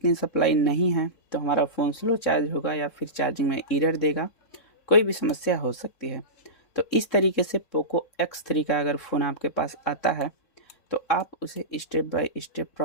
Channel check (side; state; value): right; late; 3.7 ms